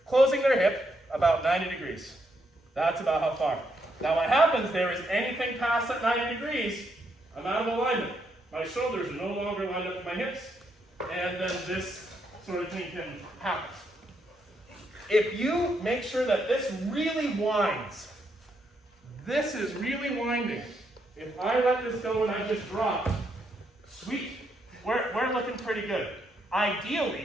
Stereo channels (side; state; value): both; normal; correlation 0.77